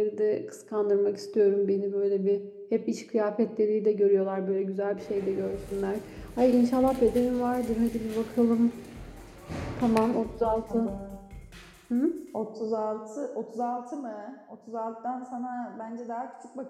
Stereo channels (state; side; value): identical; both; correlation 1.00